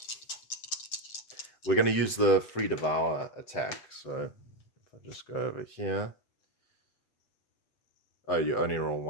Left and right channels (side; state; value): right; late; 7.9 ms